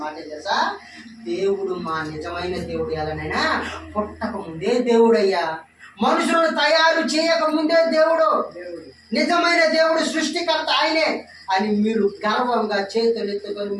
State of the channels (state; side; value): identical; both; correlation 1.00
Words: మాట తెలుసా? దేవుడు మా నిజమైన దేవుడు ఎలానైనా పుట్టక ముందే దేవుడయ్యా. మనుషులను తయారు చేయక ముందే దేవుడు. నిజమైన దేవుడు, సృష్టికర్త ఆయనే అని మీరు గర్వంగా చేతులు ఎత్తుకొని